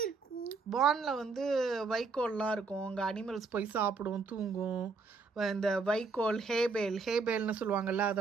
இருக்கும்? பார்னில் வந்து வைக்கோல்லாம் இருக்கும். அங்கே அனிமல்ஸ் போய் சாப்பிடும், தூங்கும். இந்த வைக்கோல், ஹேபேல்னு சொல்லுவாங்கல்ல,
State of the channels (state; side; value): quieter; left; 4.4 dB